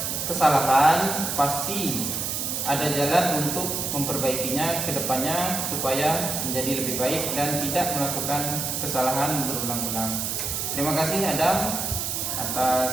kesalahan pasti ada jalan untuk memperbaikinya ke depannya supaya menjadi lebih baik dan tidak melakukan kesalahan berulang-ulang. Terima kasih Adam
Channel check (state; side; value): noise; right; hiss, 2 dB below the sound